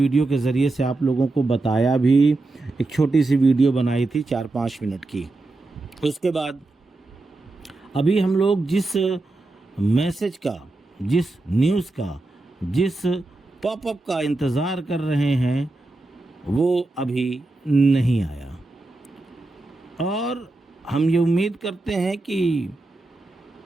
के ज़रिए से आप लोगों को बताया भी, एक छोटी सी वीडियो बनाई थी 4-5 मिनट की। उसके बाद अभी हम लोग जिस मैसेज का, जिस न्यूज़ का, जिस पॉपअप का इंतज़ार कर रहे हैं वो अभी नहीं आया और हम ये उम्मीद करते हैं कि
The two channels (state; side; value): quieter; left; 3.0 dB